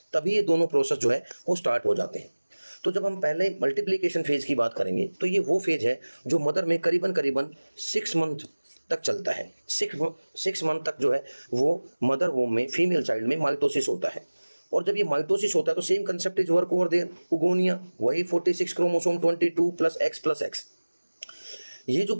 तभी ये दोनों प्रोसेस जो है वो स्टार्ट हो जाते हैं। तो जब हम पहले मल्टीप्लिकेशन फेज की बात करेंगे, तो ये वो फेज है जो मदर में करीबन 6 मंथ तक चलता है। 6 मंथ तक जो है वो मदर वोम में फीमेल चाइल्ड में माइटोसिस होता है। और जब ये माइटोसिस होता है तो same concept is work over there, oogonia, वही 46 क्रोमोसोम 22 प्लस एक्स। ये जो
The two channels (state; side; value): inverted; both; correlation -1.00